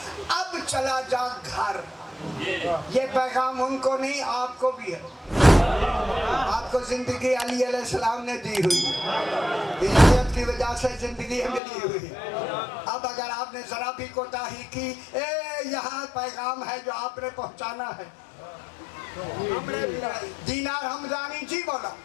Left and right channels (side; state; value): right; drops out; at 11.6 s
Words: اب چلا جا گھر. یہ پیغام ان کو نہیں آپ کو بھی ہے. آپ کو زندگی علی علیہ السلام نے دی ہوئی, ہدایت کی وجہ سے زندگی ملی ہوئی. اب اگر آپ نے ذرا بھی کوتاہی کی, یہاں پیغام ہے جو آپ نے پہنچانا ہے. دینار حمدانی جی بولا